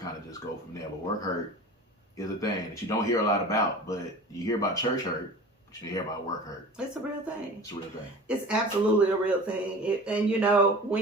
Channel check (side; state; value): both; normal; correlation 0.38